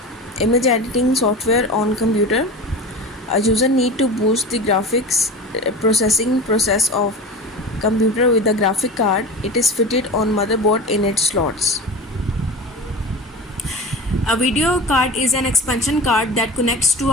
Image editing software on computer. A user need to boost the graphics processing process of computer with the graphic card. It is fitted on motherboard in its slots. A video card is an expansion card that connects to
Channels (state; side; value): normal; both; correlation 0.31